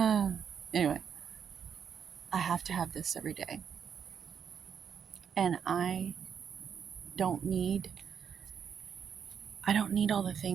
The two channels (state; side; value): quieter; left; 7.6 dB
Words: Anyway, I have to have this every day, and don't need I don't need all the